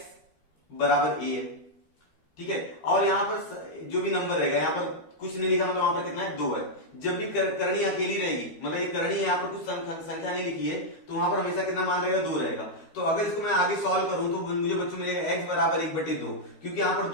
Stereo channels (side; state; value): right; late; 12 ms